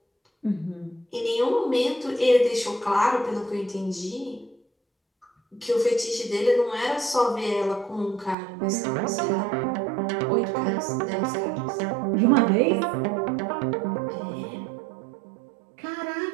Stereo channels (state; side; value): drops out; left; at 8.3 s